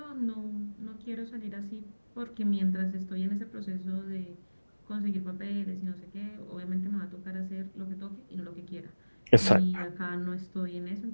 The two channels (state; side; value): inverted; both; correlation -1.00